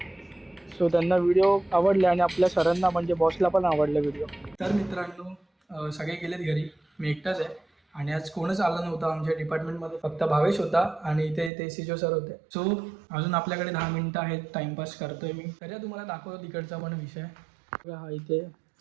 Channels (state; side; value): drops out; left; at 11.5 s